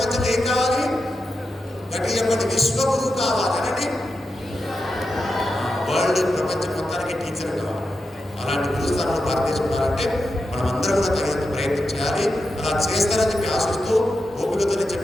ఏం కావాలి? గట్టి చెప్పండి. విశ్వగురు కావాలనండి. వరల్డ్ ప్రపంచం మొత్తానికి టీచర్ కావాలి. అలాంటి గురుస్థానంలో భారతదేశం ఉండాలంటే మనం అందరం కూడా తగినంత ప్రయత్నం చేయాలి. అలా చేస్తారని చెప్పి ఆశిస్తూ, ఓపికతో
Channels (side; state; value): both; normal; correlation 0.89